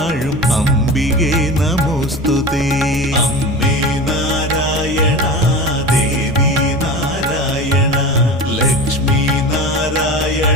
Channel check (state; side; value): normal; both; correlation 0.30